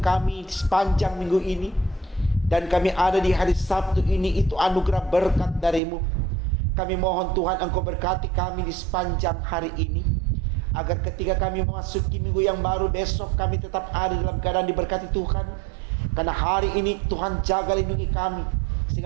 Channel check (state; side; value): drops out; left; at 5.8 s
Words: sepanjang minggu ini. Dan kami ada di hari Sabtu ini, itu anugerah berkat darimu. Kami mohon Tuhan Engkau berkati kami di sepanjang hari ini, agar ketika kami memasuki minggu yang baru besok, kami tetap ada dalam keadaan diberkati Tuhan. Karena hari ini Tuhan jaga lindungi kami,